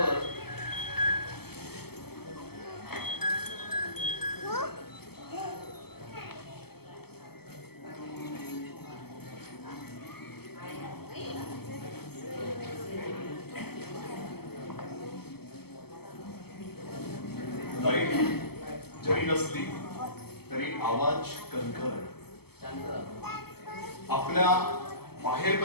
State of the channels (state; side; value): late; right; 0.96 ms